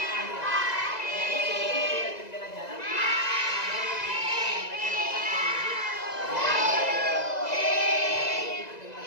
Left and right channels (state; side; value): late; right; 2.0 ms